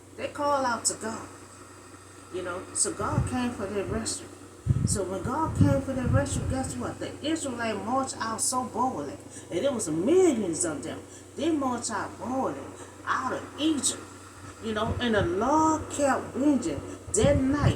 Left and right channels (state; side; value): identical; both; correlation 1.00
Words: they call out to God. So God came for their rescue. So when God came for their rescue, guess what? The Israelites marched out so boldly, and there was millions of them. They marched out boldly out of Egypt, and the Lord kept bringing that